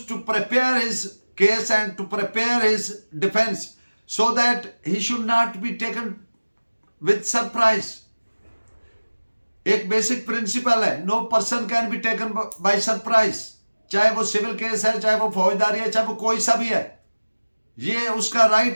to prepare his case and to prepare his defense so that he should not be taken with surprise. एक basic principle है, no person can be taken by surprise, चाहे वो civil case है, चाहे वो फौजदारी है, चाहे वो कोई सा भी है। ये उसका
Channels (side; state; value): both; inverted; correlation -1.00